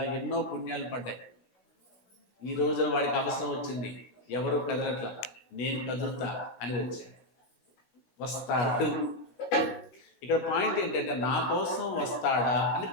ఎన్నో పుణ్యాలు పడ్డాయి. ఈ రోజున వాడికి అవసరం వచ్చింది, ఎవరు కదలట్లా, నేను కదులుతా అని వచ్చాడు. వస్తాడు. ఇక్కడ పాయింట్ ఏంటంటే, నా కోసం వస్తాడా అని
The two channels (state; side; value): late; right; 16 ms